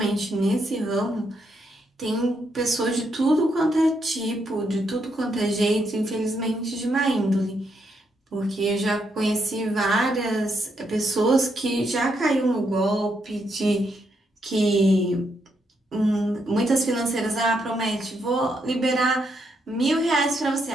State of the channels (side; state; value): both; normal; correlation 0.78